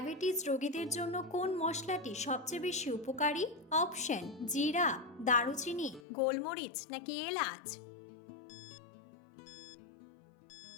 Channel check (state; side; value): drops out; right; at 6.0 s